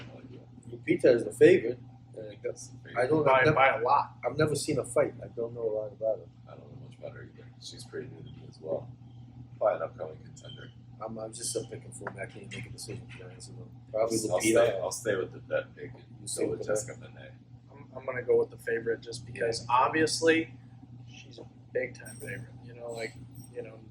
idea. Lupita is the favorite. I think that's the I favorite. don't. By a lot. I've never seen a fight. I don't know a lot about her. I don't know much about her either. She's pretty new to me as well. Probably an upcoming contender. I'm just picking for me. I can't make a decision for that. So probably I'll Lupita. stay with the vet pick and You stay go with with the Jessica Benet. I'm gonna go with the favorite just because obviously she's a big time favorite. You know, like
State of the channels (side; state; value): both; identical; correlation 1.00